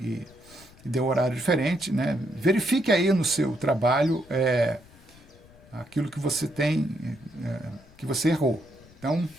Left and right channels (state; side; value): noise; left; rumble, 25 dB below the sound